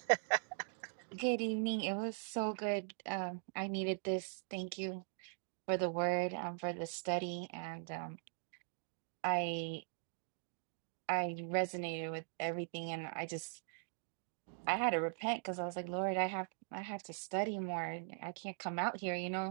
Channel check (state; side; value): silent; left; digital silence